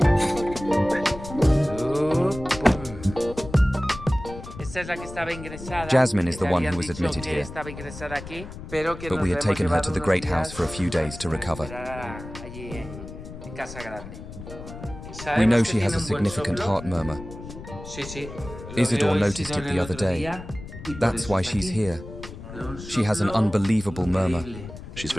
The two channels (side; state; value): left; noise; rumble, 13 dB below the sound